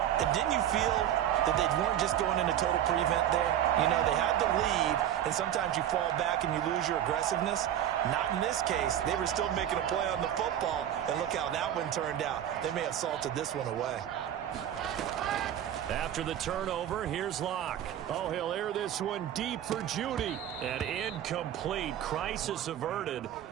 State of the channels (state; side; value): quieter; left; 10.9 dB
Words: And didn't you feel that they weren't just going into total prevent there? You know, they had the lead, and sometimes you fall back and you lose your aggressiveness. Not in this case. They were still making a play on the football, and look how that one turned out. They may have salted this one away. After the turnover, here's Locke. Oh, he'll air this one deep for Judy. And incomplete. Crisis averted.